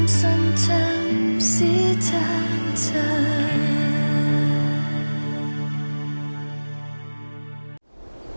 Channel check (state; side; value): inverted; both; correlation -1.00